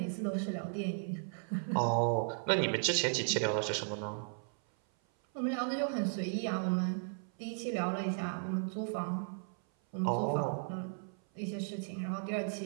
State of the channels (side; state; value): left; silent; 54 dB below the other